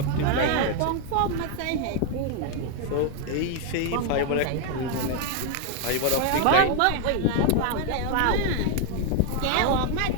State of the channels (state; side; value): different; both; correlation 0.01